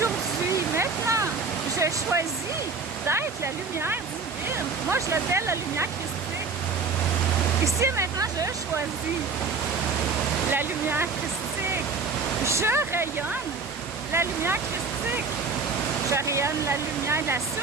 maintenant, je choisis d'être la lumière divine. Moi, je l'appelle la lumière christique. Ici et maintenant, je choisis la lumière christique. Je rayonne la lumière christique. Je rayonne la lumière de la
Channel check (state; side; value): quieter; left; 4.7 dB